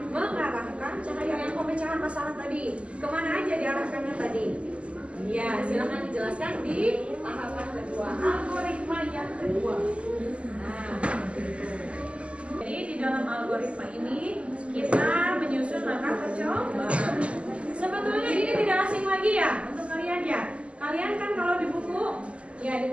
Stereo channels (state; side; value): late; left; 0.058 ms